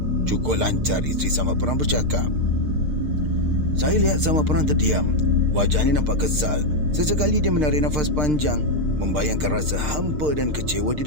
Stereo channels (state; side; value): late; left; 6.6 ms